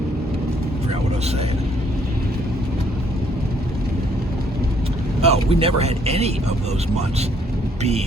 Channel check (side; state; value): both; normal; correlation 0.66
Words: Forgot what I was saying. Oh, we never had any of those months